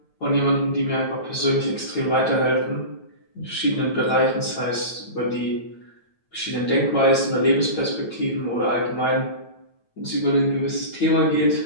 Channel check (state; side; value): late; right; 9.0 ms